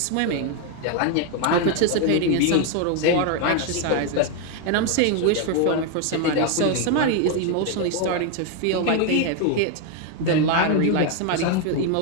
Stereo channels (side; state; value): both; different; correlation 0.01